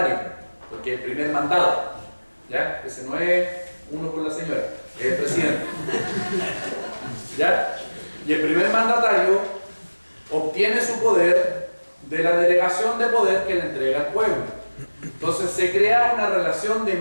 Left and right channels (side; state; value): both; inverted; correlation -1.00